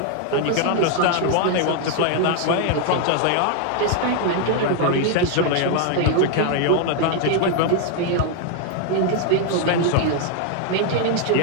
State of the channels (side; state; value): both; different; correlation 0.00